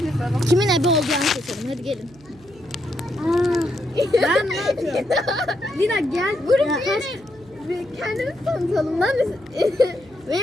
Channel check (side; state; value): right; noise; hum, 25 dB below the sound